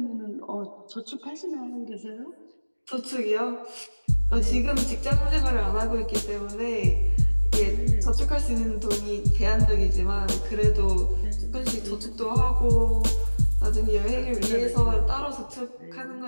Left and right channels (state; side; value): inverted; both; correlation -1.00